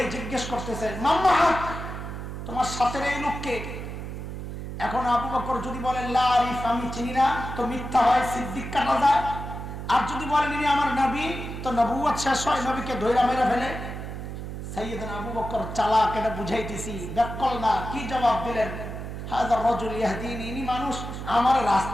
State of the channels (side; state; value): right; noise; hum, 7 dB below the sound